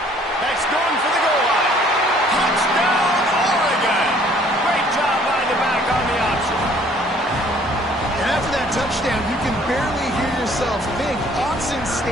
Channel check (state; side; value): normal; both; correlation 0.58